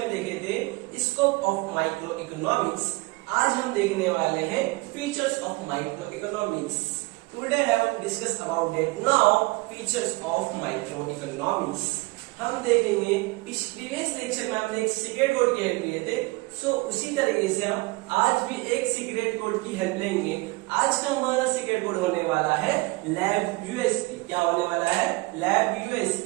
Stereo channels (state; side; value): quieter; left; 23.9 dB